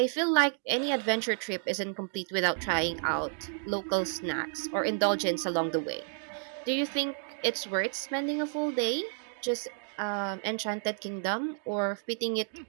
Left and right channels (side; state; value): left; silent; digital silence